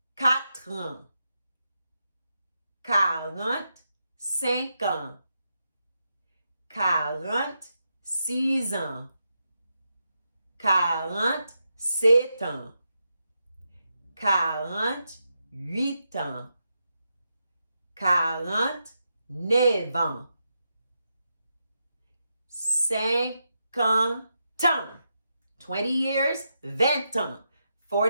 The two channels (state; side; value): inverted; both; correlation -0.85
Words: ans. 45 ans. 46 ans. 47 ans. 48 ans. 49 ans. 50 ans. 20 years, 20 ans.